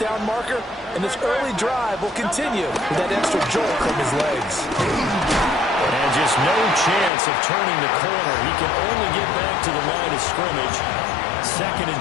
down marker, and this early drive will continue with that extra jolt from his legs. And just no chance of turning the corner. He can only get back to the line of scrimmage. 2nd and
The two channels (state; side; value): drops out; right; at 7.1 s